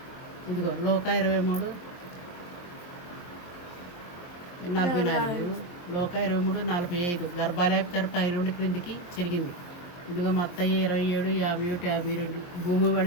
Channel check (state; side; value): late; right; 23 ms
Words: ఇదిగో లోకా 23:44, లోకా 23:45 గర్భాలయపు తెర పై నుండి క్రిందికి చెరిగింది. ఇదిగో మత్తయి 27:51-52 భూమి